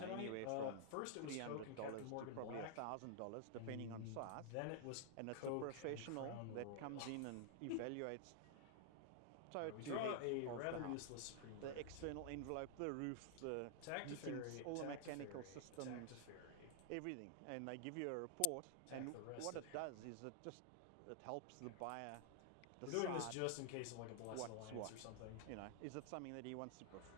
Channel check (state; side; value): different; both; correlation -0.01